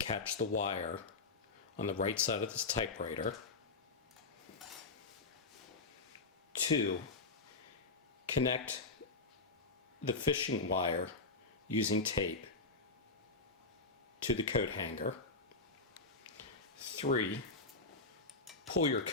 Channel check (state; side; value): quieter; right; 3.7 dB